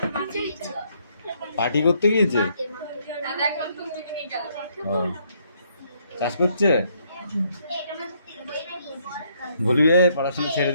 পার্টি করতে গিয়েছে, চাষ করছে। বলবি পড়াশোনা ছেড়ে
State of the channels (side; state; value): both; inverted; correlation -0.70